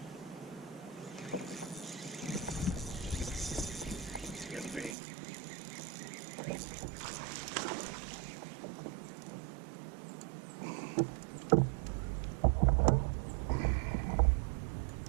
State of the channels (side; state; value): left; drops out; at 5.0 s